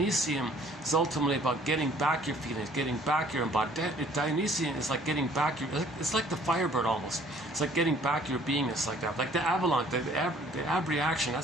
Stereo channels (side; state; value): both; normal; correlation 0.57